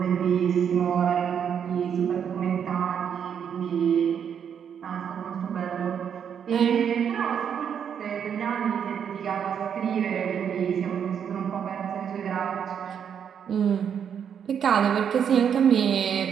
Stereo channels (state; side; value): quieter; left; 8.0 dB